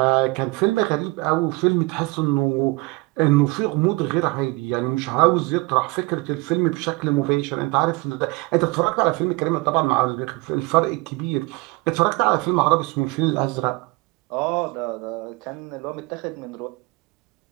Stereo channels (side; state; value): left; quieter; 24.4 dB